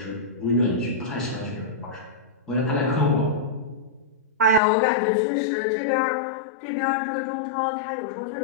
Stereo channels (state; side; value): drops out; right; at 4.6 s